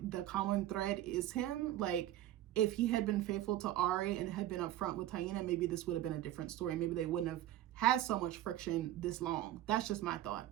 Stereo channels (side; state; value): left; quieter; 13.6 dB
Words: the common thread is him. Like, if he had been faithful to Ari and had been upfront with Taina, maybe this would have been a different story. Maybe they wouldn't have had so much friction this long. That's just my thought.